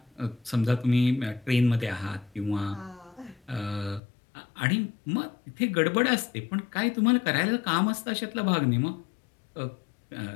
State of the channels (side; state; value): right; drops out; at 4.0 s